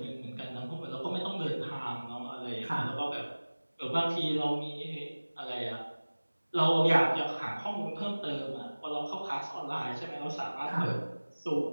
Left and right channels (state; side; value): inverted; both; correlation -1.00